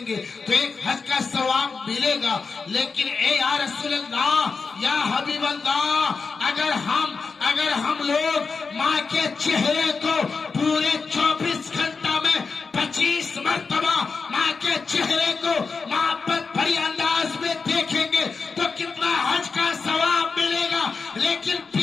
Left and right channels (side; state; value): right; quieter; 4.8 dB